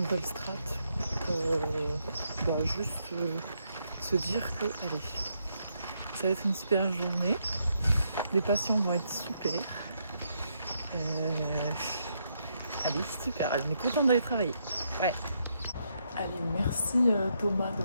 strat pour juste se dire que, allez, ça va être une super journée. Les patients vont être super. Allez, super. On est content d'aller travailler. Ouais. Allez, merci Thomas de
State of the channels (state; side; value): inverted; both; correlation -0.77